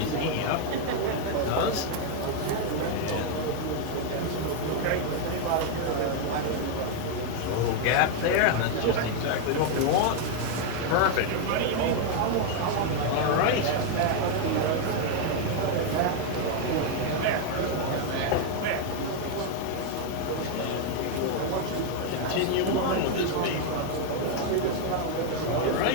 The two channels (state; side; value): different; both; correlation 0.00